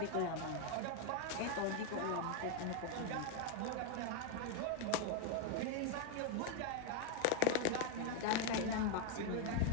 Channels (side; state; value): both; different; correlation 0.01